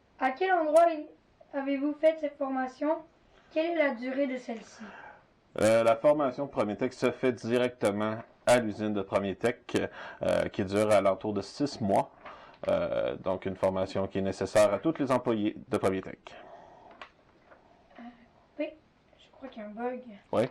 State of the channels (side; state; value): both; identical; correlation 1.00